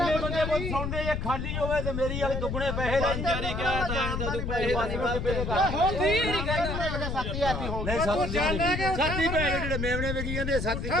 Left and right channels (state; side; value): noise; left; rumble, 3 dB below the sound